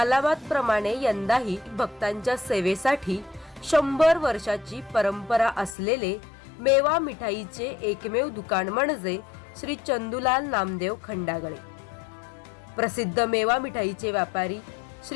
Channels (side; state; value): right; drops out; at 5.8 s